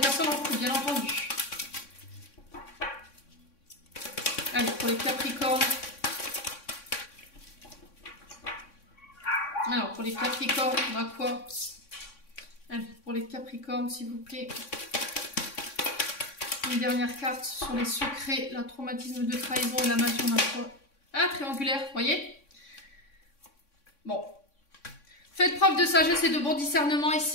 en couple, bien entendu. Allez, pour les Capricornes. Alors, pour les Capricornes, on a quoi? Allez, pour les Capricornes, s'il vous plaît. Une dernière carte sur les secrets, le traumatisme de trahison et la magie, on a quoi? Ah, triangulaire, vous voyez? Bon. Faites preuve de sagesse et de bon discernement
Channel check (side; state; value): right; late; 3.6 ms